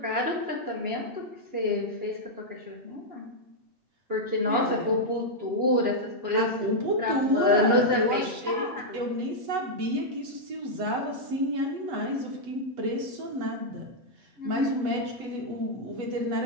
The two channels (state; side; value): late; left; 8.1 ms